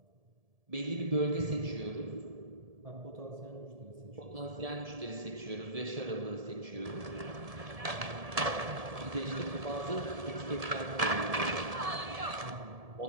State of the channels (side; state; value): left; late; 1.7 ms